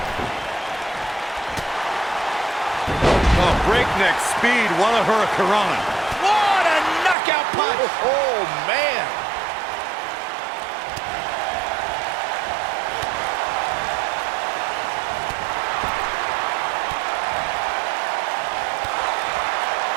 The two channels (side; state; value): left; drops out; at 7.2 s